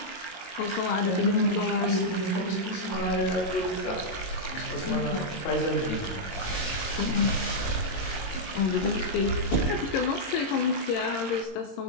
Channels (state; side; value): late; right; 22 ms